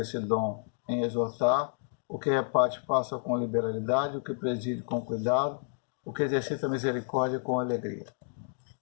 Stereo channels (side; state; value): right; silent; digital silence